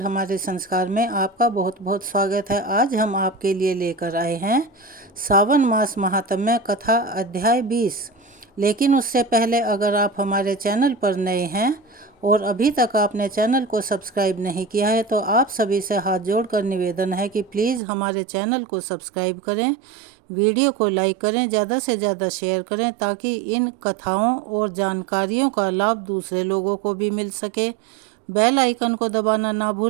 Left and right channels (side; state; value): left; drops out; at 17.8 s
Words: हमारे संस्कार में आपका बहुत बहुत स्वागत है। आज हम आपके लिए लेकर आए हैं सावन मास महात्म्य कथा अध्याय 20। लेकिन उससे पहले अगर आप हमारे चैनल पर नए हैं और अभी तक आपने चैनल को सब्सक्राइब नहीं किया है तो आप सभी से हाथ जोड़कर निवेदन है कि प्लीज़ हमारे चैनल को सब्सक्राइब करें, वीडियो को लाइक करें, ज़्यादा से ज़्यादा शेयर करें ताकि इन कथाओं और जानकारियों का लाभ दूसरे लोगों को भी मिल सके। बेल आइकन को दबाना ना